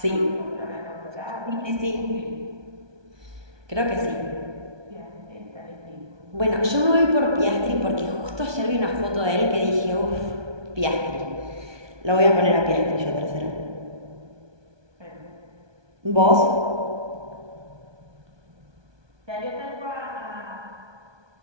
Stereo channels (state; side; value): late; left; 1.2 ms